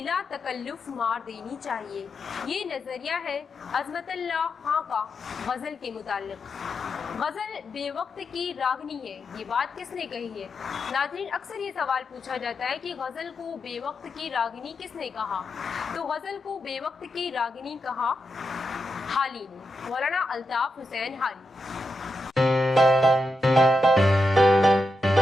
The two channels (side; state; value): both; normal; correlation 0.87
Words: तकल्लुफ़ मार देनी चाहिए, ये नज़रिया है अज़मतुल्लाह खां का गज़ल के मुतालिक। गज़ल बेवक्त की रागनी है, ये बात किसने कही है। नाज़रीन अक्सर ये सवाल पूछा जाता है कि गज़ल को बेवक्त की रागनी किसने कहा, तो गज़ल को बेवक्त की रागनी कहा हाली ने, मौलाना अल्ताफ़ हुसैन हाली।